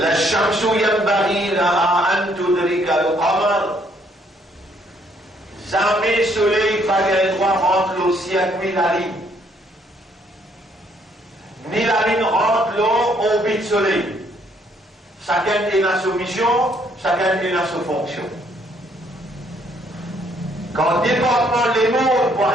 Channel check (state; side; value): normal; both; correlation 0.67